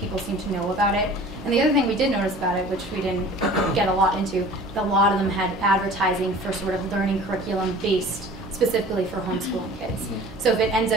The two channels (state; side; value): normal; both; correlation 0.45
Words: seem to know about it. And the other thing we did notice about it, which we didn't get a lot into, a lot of them had advertising for sort of learning curriculum based specifically for homeschooling kids. So if it ends